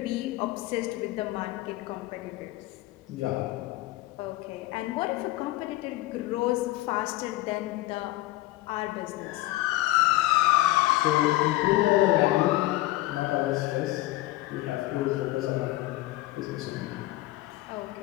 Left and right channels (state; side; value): quieter; right; 17.6 dB